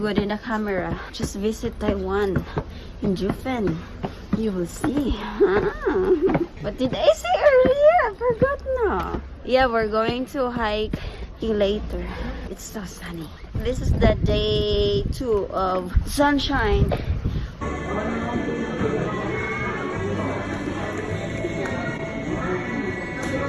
in the camera. Just visit Taiwan in Jiufen. You will see. What did I say earlier? I forgot now. Yeah, we're going to hike later. It's so sunny. This is the day 2 of sunshine.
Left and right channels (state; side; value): identical; both; correlation 1.00